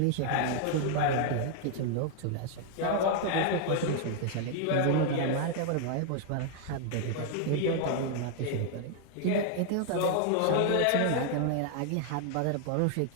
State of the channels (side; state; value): both; different; correlation 0.00